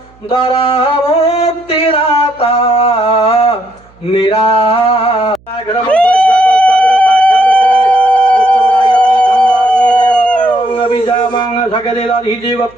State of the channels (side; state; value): right; noise; hum, 30 dB below the sound